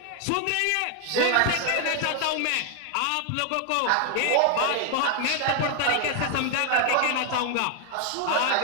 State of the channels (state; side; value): different; both; correlation 0.00